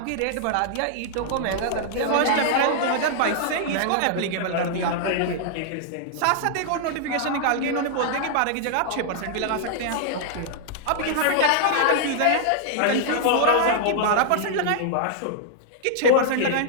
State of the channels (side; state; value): both; different; correlation -0.01